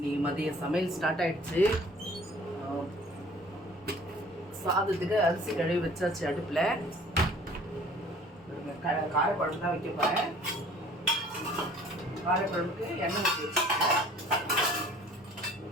மதிய சமையல் ஸ்டார்ட் ஆயிடுச்சு. சாதத்துக்கு அரிசி கழுவி வச்சாச்சு அடுப்பில். காரக்குழம்பு தான் வைக்க போகிறேன். காரக்குழம்புக்கு எண்ணெய் ஊற்றி வச்சுருக்கேன்.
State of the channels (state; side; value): normal; both; correlation 0.51